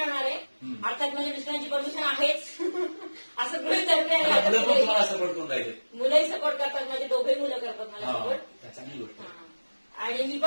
आहे. हम्म. अर्थात माझ्या मिस्टरांची परमिशन आहेच. असं गृहीत धरले आता मुलं पण आहे. तुम्हाला सपोर्ट करून राहिले. मुलंही सपोर्ट करतात, माझे दोघे मुलं करतात मला हा, सपोर्ट. चांगली गोष्ट आहे. आणि मी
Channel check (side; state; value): both; inverted; correlation -1.00